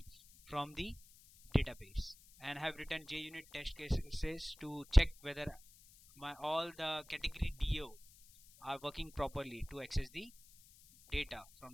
from the database and have written JUnit test cases to check whether all the category DAO are working properly to access the data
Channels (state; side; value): noise; left; hiss, 24 dB below the sound